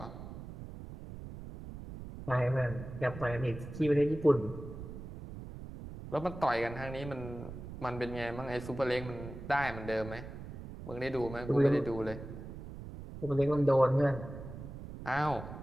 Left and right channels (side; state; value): right; noise; rumble, 11 dB below the sound